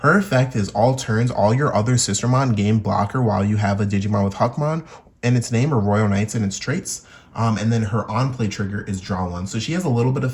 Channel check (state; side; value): identical; both; correlation 1.00